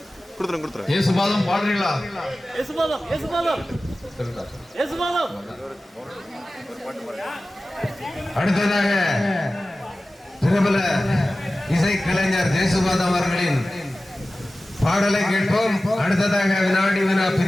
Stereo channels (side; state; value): both; normal; correlation 0.96